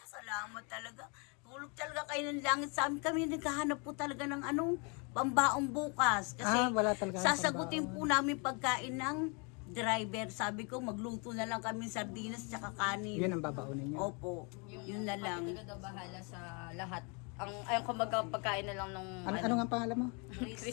Salamat talaga. Hulog talaga kayo ng langit sa amin. Kami naghahanap po talaga ng pambaong bukas. Kasi Wala talaga. sasagutin po namin pagkain ng driver. Sabi ko, magluto na lang kami sardinas tsaka kanin. Yun ang babaunin nyo. Opo, yun na lang. Talaga daw bahala sa lahat. Ang kumbaga pagkain na lang nung Ano nga pangalan mo?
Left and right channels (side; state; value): right; quieter; 33.7 dB